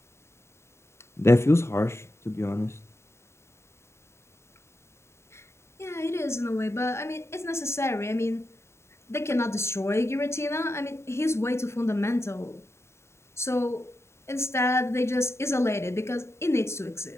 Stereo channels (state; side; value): late; right; 0.13 ms